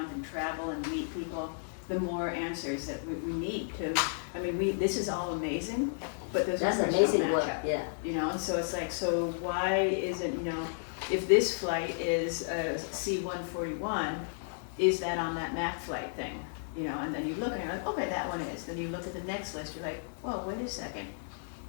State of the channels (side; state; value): right; silent; digital silence